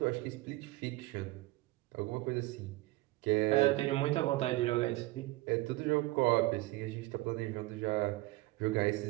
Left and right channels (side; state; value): left; quieter; 19.7 dB